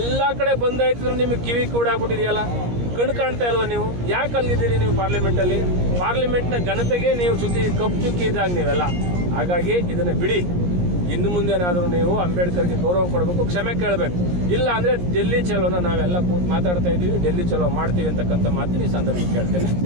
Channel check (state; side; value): late; left; 17 ms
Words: ಕಡೆ ಬಂದಾಯ್ತಿದ್ರು ನಿಮಗೆ ಕಿವಿ ಕೂಡಾಗ್ಬಿಟ್ಟಿದೆಯಲ್ಲ, ಕಣ್ಣು ಕಾಣ್ತಾ ಇಲ್ವ ನೀವು? ಯಾಕೆ ಅಲ್ಲಿದ್ದೀರಿ ನೀವು ಪಾರ್ಲಿಮೆಂಟಲ್ಲಿ? ಪಾರ್ಲಿಮೆಂಟ್ನ ಘನತೆಗೆ ನೀವು ಕಪ್ಪು ಚುಕ್ಕಿ ಇದ್ದಾಗ ನೀವೆಲ್ಲ. ಹಾಗಾಗಿ ಇದನ್ನು ಬಿಡಿ. ಇನ್ನು ಮುಂದೇನಾದರೂ ನೀವು ಅಂಬೇಡ್ಕರ್ಗೆ ಗೌರವ ಕೊಡಬೇಕು, ಕ್ಷಮೆ ಕೇಳಬೇಕು. ಇಲ್ಲ ಅಂದರೆ ಡೆಲ್ಲಿ ಚಲೋನ ನಾವೆಲ್ಲ ಕೂತು ಮಾತಾಡ್ತಾ ಇದ್ದೀವಿ, ಡೆಲ್ಲಿ ಚಲೋ ಮಾಡ್ತೀವಿ ಅಂತಕ್ಕಂಥ ಮಾತಿನ ಈ ಸಂದರ್ಭಕ್ಕೆ ಕೇಳ್ತೇನೆ.